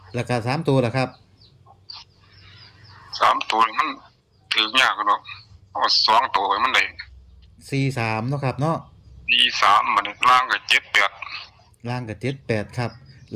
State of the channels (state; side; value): identical; both; correlation 1.00